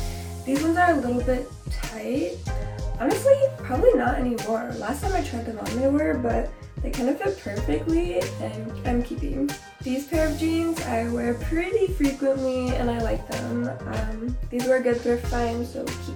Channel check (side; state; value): both; identical; correlation 1.00